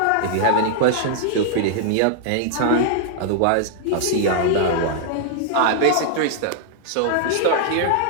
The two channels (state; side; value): different; both; correlation -0.01